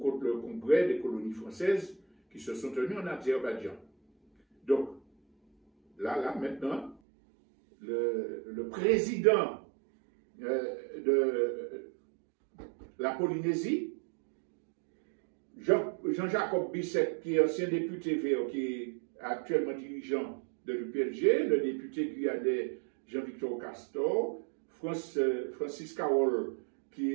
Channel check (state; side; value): drops out; left; at 7.0 s